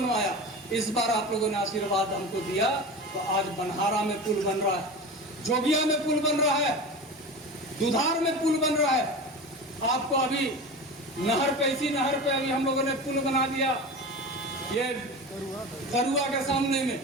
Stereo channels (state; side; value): normal; both; correlation 0.30